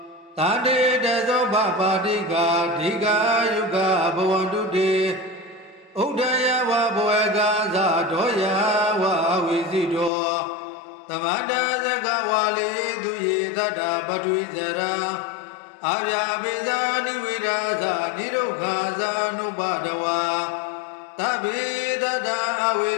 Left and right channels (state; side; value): drops out; right; at 10.1 s